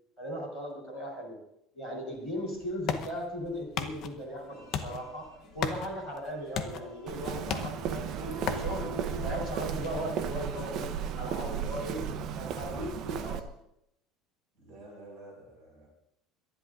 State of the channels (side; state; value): both; normal; correlation 0.33